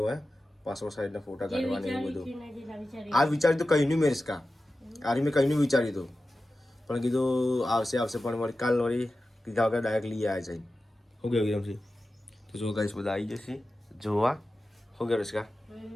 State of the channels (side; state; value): both; normal; correlation 0.94